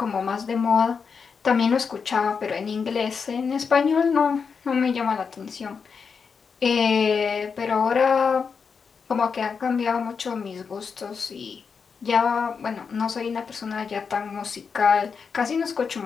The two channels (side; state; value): right; quieter; 5.8 dB